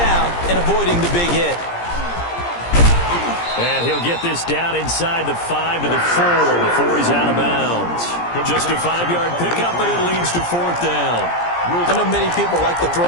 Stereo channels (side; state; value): right; late; 17 ms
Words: and avoiding the big hit. And he'll get this down inside the 5 to the 4 before he's out of bounds. Just a 5-yard pickup, and it leads to 4th down. I know many people like to